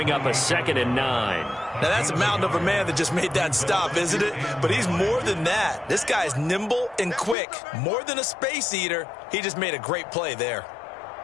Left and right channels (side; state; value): right; drops out; at 7.4 s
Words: up a 2nd and 9. Now, that's a mountain of a man that just made that stop, isn't it? But he's more than that. This guy's nimble and quick. More than a space eater, he just made a great play there.